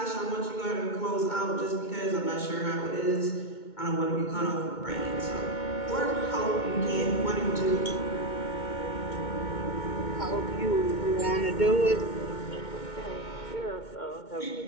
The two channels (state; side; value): late; right; 2.2 ms